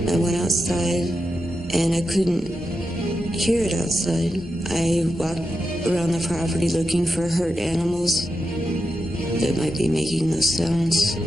I went outside, and I couldn't hear it outside. I walked around the property looking for hurt animals that might be making those sounds.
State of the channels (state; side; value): normal; both; correlation 0.89